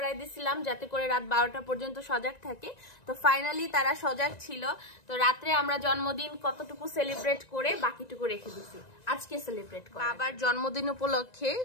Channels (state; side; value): late; right; 1.9 ms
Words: দিছিলাম যাতে করে রাত 12টা পর্যন্ত সজাগ থাকে। তো ফাইনালি তারা সজাগ ছিল। তো রাত্রে আমরা জন্মদিন কতটুকু সেলিব্রেট করে বাকিটুকু রেখে দিছি আজকে সেলিব্রেট করে। বাবার জন্মদিন উপলক্ষে